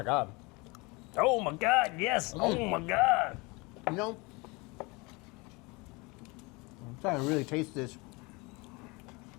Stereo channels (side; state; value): right; quieter; 26.4 dB